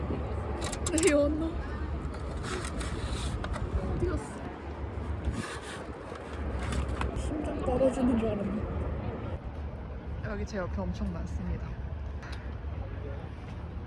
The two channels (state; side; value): identical; both; correlation 1.00